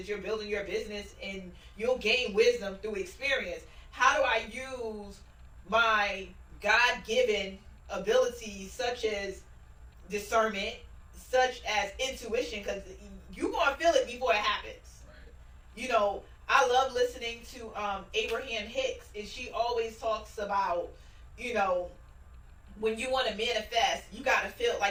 you're building your business, and you'll gain wisdom through experience. How do I use my God-given abilities such as discernment, such as intuition, because you're going to feel it before it happens. Right. You know, I love listening to Abraham Hicks, and she always talks about, you know, when you want to manifest, you got to feel,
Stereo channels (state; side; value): identical; both; correlation 1.00